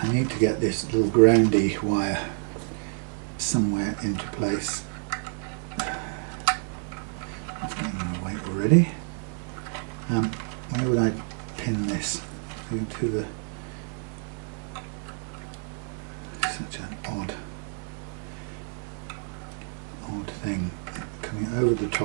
I need to get this little groundy wire somewhere into place. It's getting in the way already. Where would I pin this to the such an odd thing coming over the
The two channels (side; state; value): left; silent; 59 dB below the other